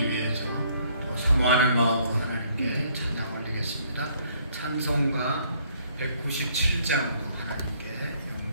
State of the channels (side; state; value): both; inverted; correlation -0.64